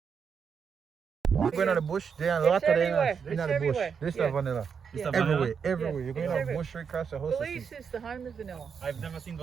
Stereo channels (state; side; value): quieter; left; 6.5 dB